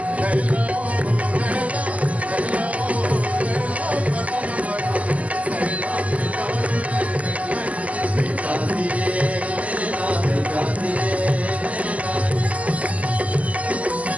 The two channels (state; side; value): late; left; 0.070 ms